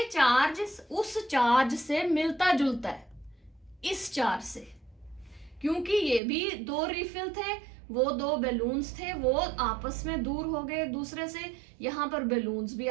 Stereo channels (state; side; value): drops out; left; at 6.2 s